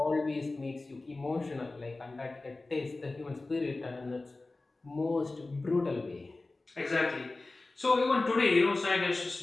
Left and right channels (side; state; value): right; quieter; 3.2 dB